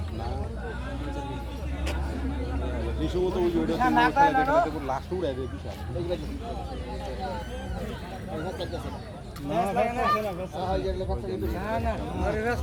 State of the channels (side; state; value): both; identical; correlation 1.00